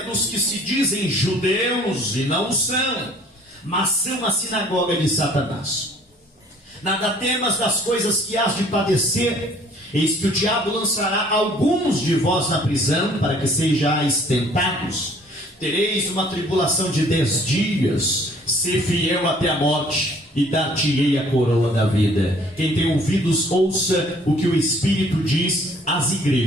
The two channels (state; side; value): normal; both; correlation 0.56